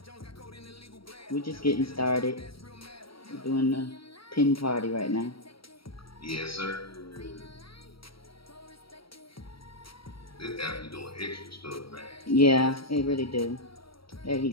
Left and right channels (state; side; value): late; right; 0.75 ms